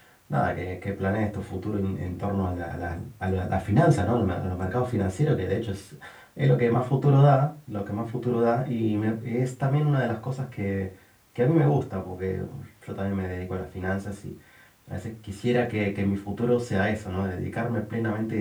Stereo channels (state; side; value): identical; both; correlation 1.00